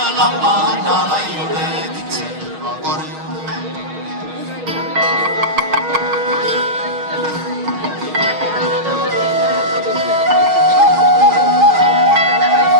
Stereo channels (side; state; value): left; late; 6.4 ms